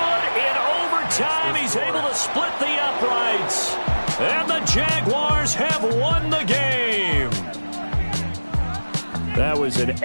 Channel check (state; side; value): inverted; both; correlation -1.00